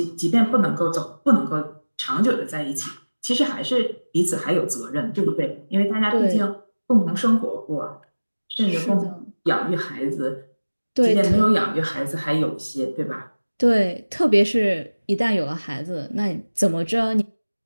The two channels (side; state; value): both; inverted; correlation -1.00